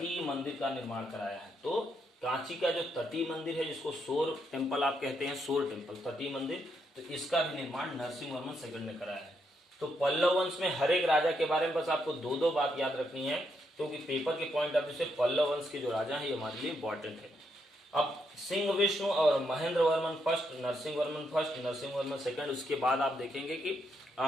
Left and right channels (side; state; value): both; normal; correlation 0.78